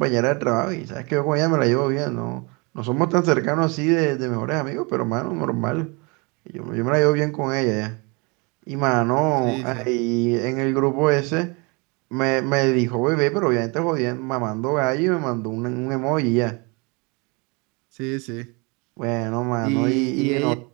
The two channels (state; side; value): quieter; left; 29.7 dB